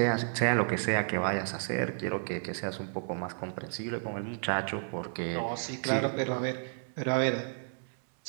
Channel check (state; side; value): silent; left; digital silence